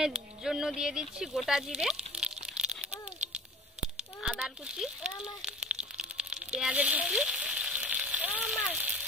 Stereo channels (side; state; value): both; normal; correlation 0.42